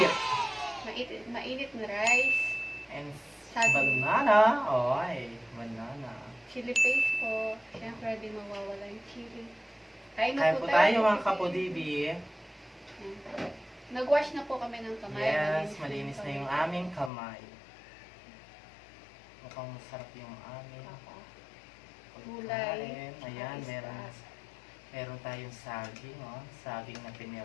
Mainit na rice. And Saging. banana. Oy, banana. Chili paste po. Siyempre, di mawawala yung chili. Kain Kain po tayo mga kapudibi. Nag-wash na po kami ng kamay. Yes, malinis na yung aming kamay. Mukhang masarap yung aming Gulay. pagkain. Ayan, meron tayong saging, oh. Saging na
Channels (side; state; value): right; drops out; at 17.1 s